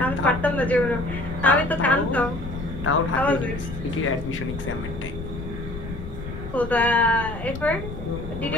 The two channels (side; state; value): left; noise; rumble, 9 dB below the sound